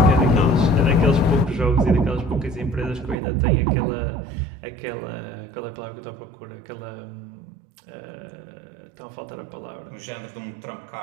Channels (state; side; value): drops out; left; at 3.2 s